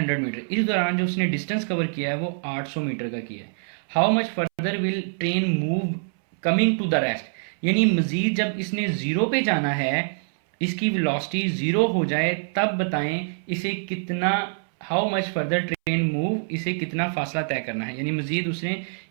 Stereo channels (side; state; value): left; silent; 62 dB below the other